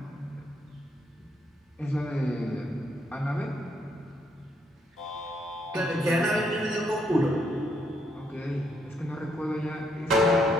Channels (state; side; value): normal; both; correlation 0.74